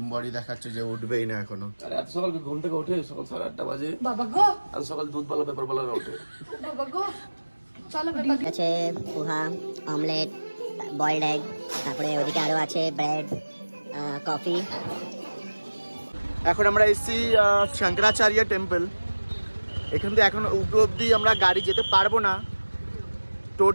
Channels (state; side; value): inverted; both; correlation -1.00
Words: বডি দেখাচ্ছে, যে উঠবেই না এখনো। আরে এত সকাল ঘুম থেকে ওঠে? সকাল 8:30 বাজে। বাবা গো, আজ সকাল দুধবালা পেপারবালা ওঠে। বাবা গো, চলো পেপার আছে, পোহা, অমলেট, বয়েলড এগ, তারপরে ওদিকে আরো আছে ব্রেড, কফি। এখন আমরা এসেছি শঙ্করাচার্য টেম্পল। এখান থেকে এখন উপর অব্দি আমরা গাড়ি যেতে পারবো না।